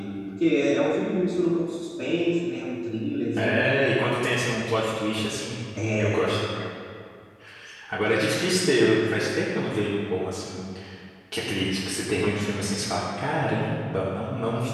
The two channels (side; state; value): both; identical; correlation 1.00